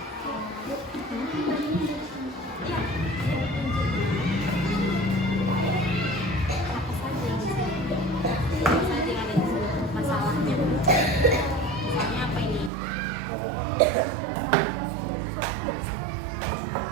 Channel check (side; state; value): left; drops out; at 12.7 s